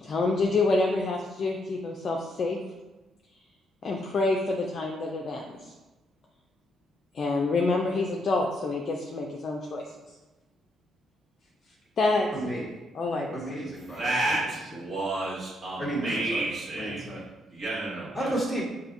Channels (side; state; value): both; normal; correlation 0.76